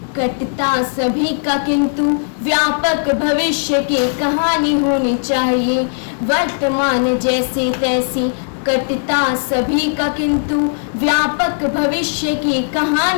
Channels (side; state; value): right; silent; 68 dB below the other